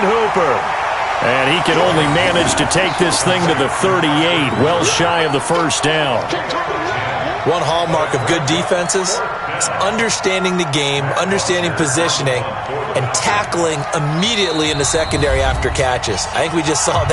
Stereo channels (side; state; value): both; identical; correlation 1.00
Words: Hooper. And he can only manage to take this thing to the 38, well shy of the first down. One hallmark of good defenses is understanding the game, understanding positioning, and tackling immediately in the secondary after catches. I think we just saw